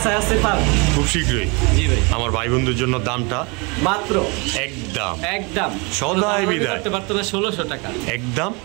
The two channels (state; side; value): quieter; left; 29.7 dB